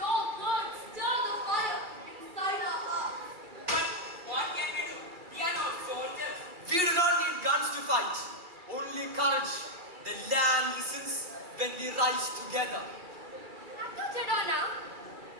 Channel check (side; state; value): left; late; 2.3 ms